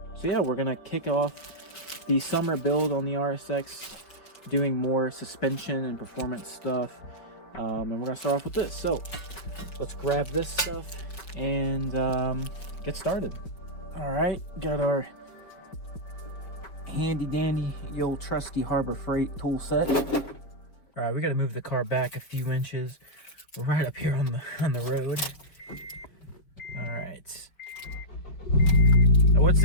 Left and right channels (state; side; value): late; right; 5.0 ms